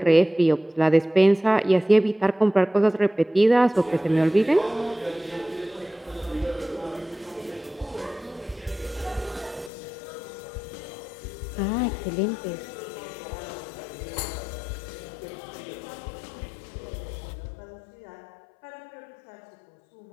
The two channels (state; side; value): drops out; right; at 9.7 s